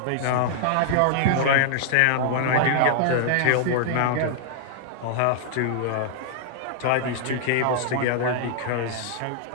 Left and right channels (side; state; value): both; different; correlation -0.01